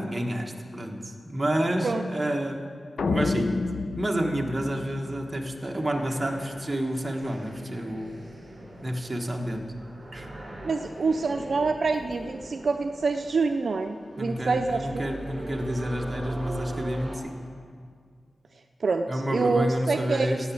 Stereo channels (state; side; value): normal; both; correlation 0.93